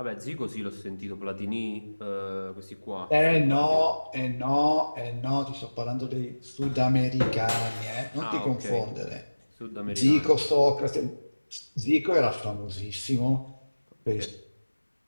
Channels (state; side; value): inverted; both; correlation -1.00